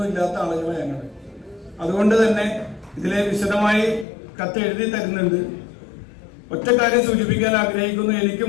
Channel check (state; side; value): drops out; right; at 4.0 s